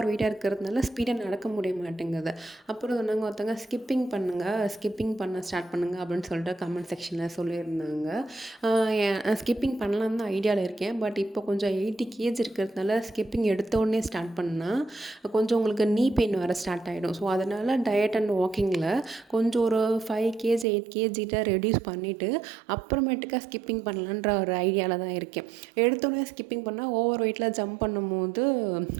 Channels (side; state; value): left; drops out; at 20.7 s